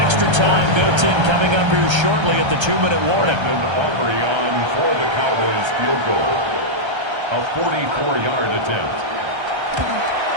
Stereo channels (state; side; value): late; left; 1.3 ms